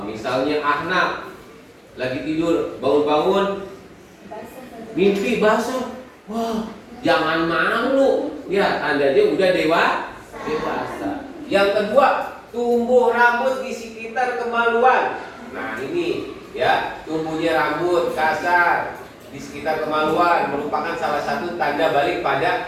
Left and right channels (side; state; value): both; identical; correlation 1.00